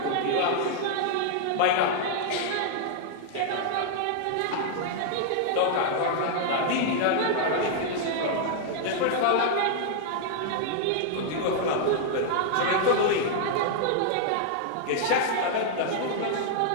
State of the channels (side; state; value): both; different; correlation -0.01